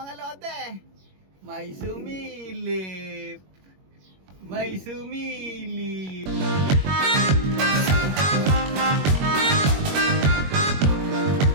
lodi, may sumilip,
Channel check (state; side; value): late; left; 21 ms